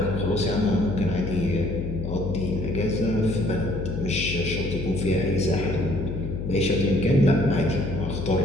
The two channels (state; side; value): noise; left; hum, 5 dB below the sound